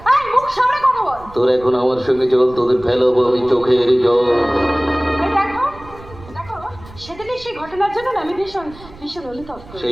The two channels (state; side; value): noise; right; rumble, 19 dB below the sound